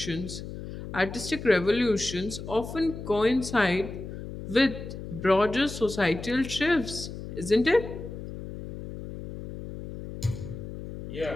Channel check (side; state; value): left; noise; hum, 10 dB below the sound